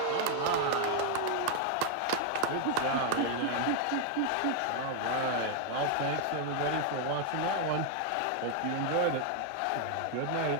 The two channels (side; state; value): both; different; correlation 0.00